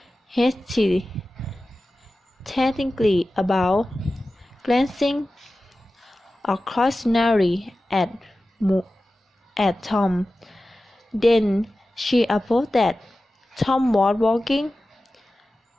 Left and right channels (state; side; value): normal; both; correlation 0.95